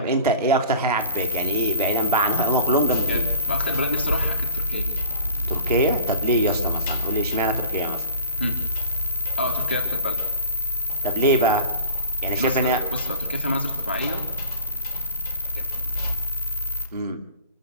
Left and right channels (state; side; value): inverted; both; correlation -0.41